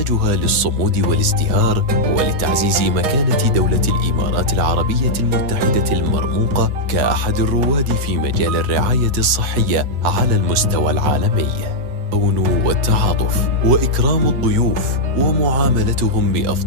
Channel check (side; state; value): left; late; 8.0 ms